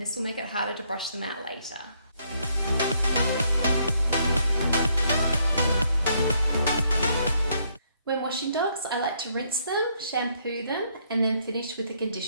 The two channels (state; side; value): inverted; both; correlation -0.71